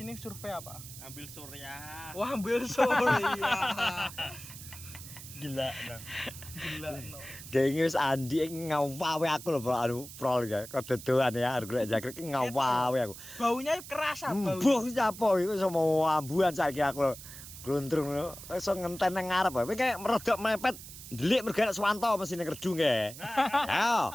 survei apa? Ambil surya. Wah, ambil surya. gila no. Gila no. Dengi wis Andi ngawawe aku lho anu prol ya. Kedodoan ya arep golek jangkrik ngawawe aku. Baunya kerasa bau. Mbuh sapa iku iso mau ambuhan saiki aku. Glundrung iso ngenten nang ngarep. Kowe kayak merodok mepet ndelik mergo Swanto mesine kerdu nge. Ayo,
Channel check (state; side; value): noise; right; hiss, 14 dB below the sound